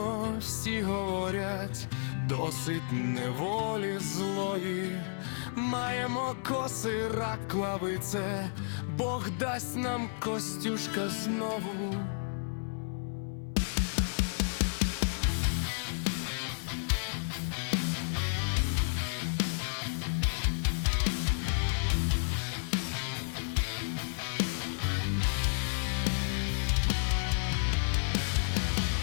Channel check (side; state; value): right; silent; 56 dB below the other